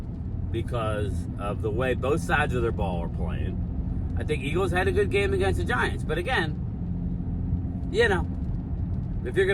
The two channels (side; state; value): both; identical; correlation 1.00